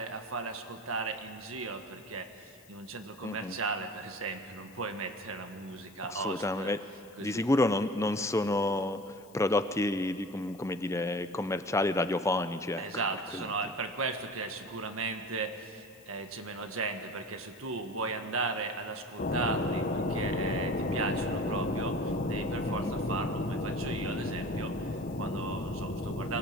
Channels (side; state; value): left; noise; hiss, 25 dB below the sound